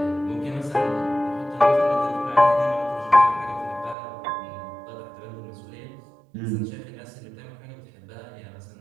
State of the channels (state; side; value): drops out; left; at 4.0 s